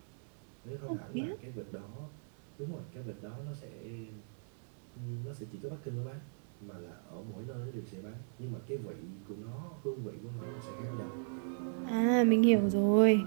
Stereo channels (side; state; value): left; silent; digital silence